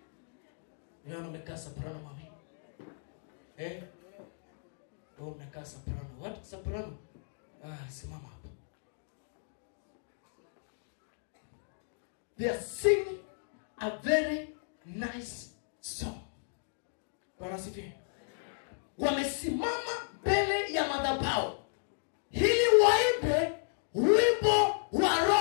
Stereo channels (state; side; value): silent; right; digital silence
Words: Niona umekaa soprano mami. Wewe unakaa soprano. What soprano? Simama hapa. They are singing a very nice song. Bwana sifiwe. Wamesimama mbele ya madhabahu ili waimbe wimbo wa